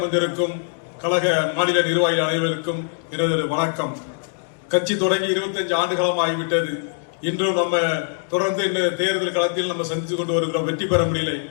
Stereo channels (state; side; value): silent; right; digital silence